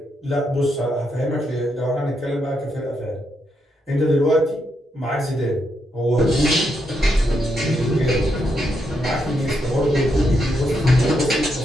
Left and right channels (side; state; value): both; normal; correlation 0.80